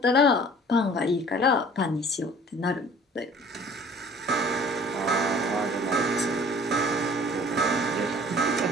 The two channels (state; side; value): normal; both; correlation 0.49